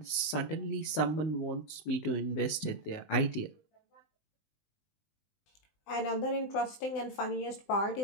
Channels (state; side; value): late; right; 20 ms